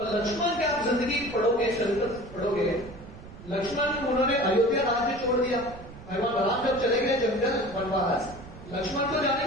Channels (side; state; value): right; noise; rumble, 16 dB below the sound